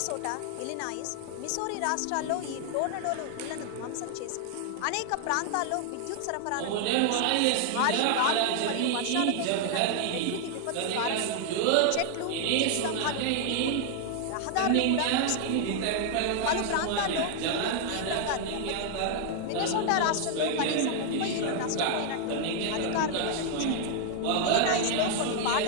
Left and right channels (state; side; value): different; both; correlation 0.00